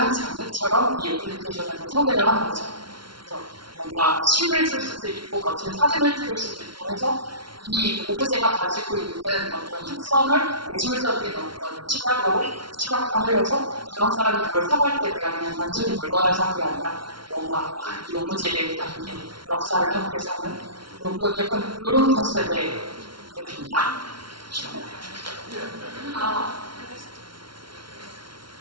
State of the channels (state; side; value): late; left; 0.73 ms